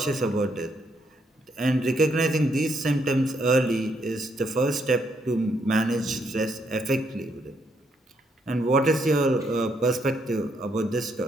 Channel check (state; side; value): normal; both; correlation 0.75